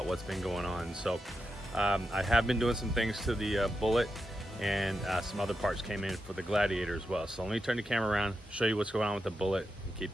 what's been going on. So I have been doing some things to the Bullitt, and some other parts came in for the Gladiator as well. So let me turn the camera around, show you what's going on with the Bullitt, and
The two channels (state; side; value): normal; both; correlation 0.87